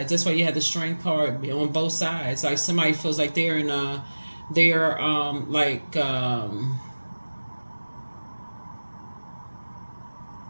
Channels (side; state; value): both; inverted; correlation -1.00